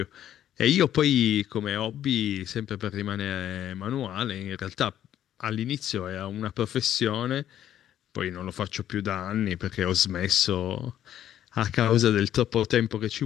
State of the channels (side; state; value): right; quieter; 11.2 dB